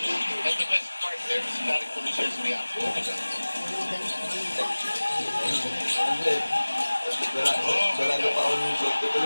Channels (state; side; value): inverted; both; correlation -1.00